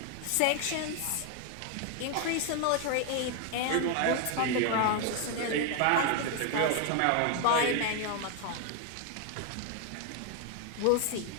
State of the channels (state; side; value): different; both; correlation 0.01